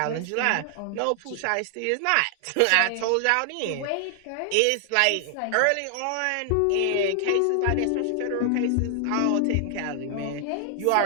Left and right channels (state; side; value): different; both; correlation 0.00